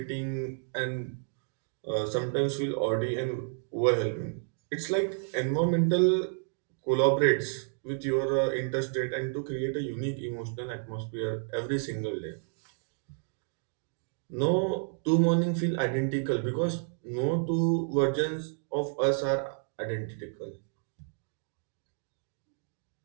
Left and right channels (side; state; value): left; silent; digital silence